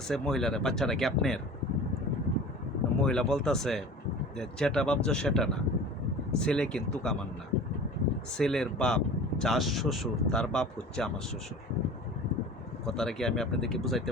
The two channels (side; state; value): both; normal; correlation 0.39